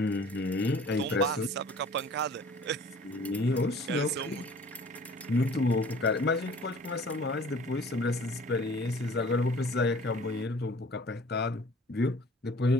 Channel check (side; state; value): both; normal; correlation 0.49